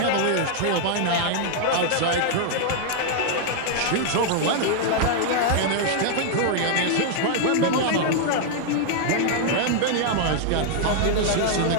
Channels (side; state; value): both; different; correlation 0.00